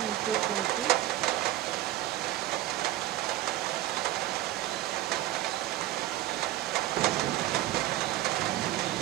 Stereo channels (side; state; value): left; quieter; 14.7 dB